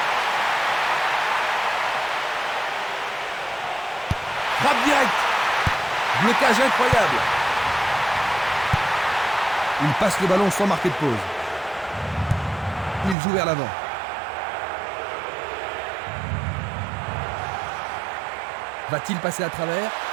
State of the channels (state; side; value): drops out; left; at 13.2 s